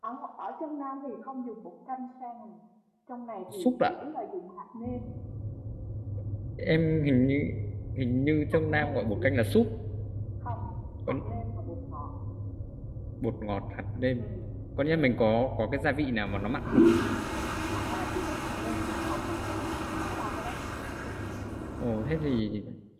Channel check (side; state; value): both; identical; correlation 1.00